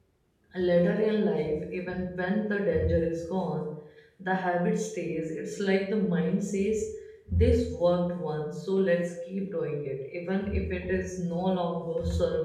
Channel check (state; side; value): identical; both; correlation 1.00